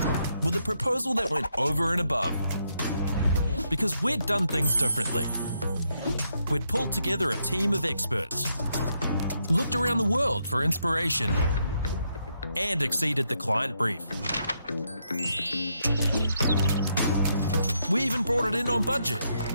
with a proposal that went over and above. Because we'd done things differently. We'd pulled together a team of experts, looked around the world for inspiration, and exceeded the client brief. We even brought it in on budget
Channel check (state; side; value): inverted; both; correlation -0.78